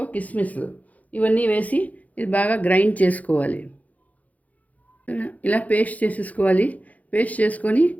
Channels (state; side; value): late; right; 0.074 ms